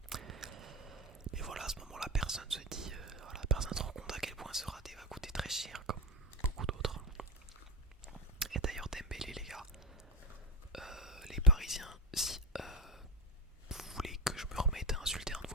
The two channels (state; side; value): normal; both; correlation 0.16